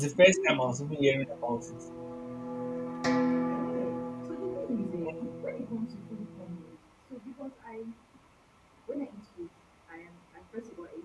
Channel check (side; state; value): both; identical; correlation 1.00